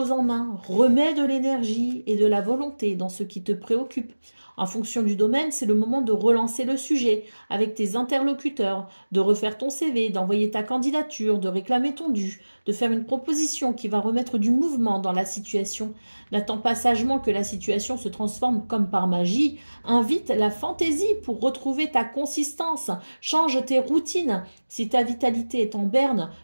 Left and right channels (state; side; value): inverted; both; correlation -1.00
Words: en main, remets de l'énergie et de la volonté dans ce qui te préoccupe. En fonction du domaine, c'est le moment de relancer le sujet avec tes interlocuteurs, de refaire ton CV, d'envoyer ta candidature, de réclamer ton dû, de faire une proposition qui va remettre du mouvement dans la situation. N'attends pas sagement que la situation se transforme comme par magie. Invite la fantaisie pour retrouver ta consistance. Change tes routines. Si ta vitalité est en berne